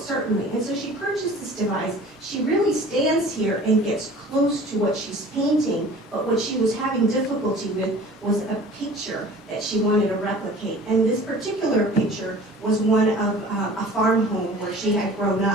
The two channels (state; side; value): normal; both; correlation 0.44